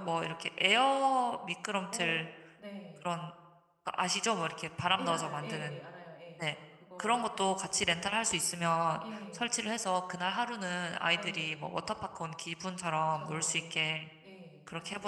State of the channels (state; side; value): identical; both; correlation 1.00